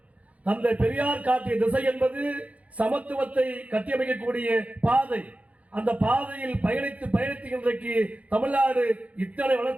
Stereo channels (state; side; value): late; left; 0.067 ms